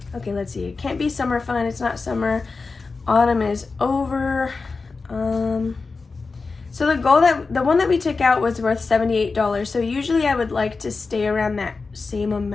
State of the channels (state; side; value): quieter; right; 4.2 dB